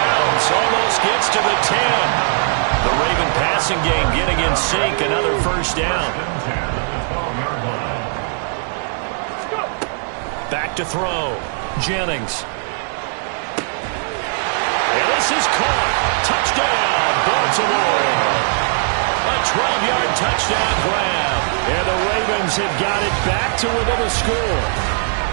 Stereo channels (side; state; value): left; silent; digital silence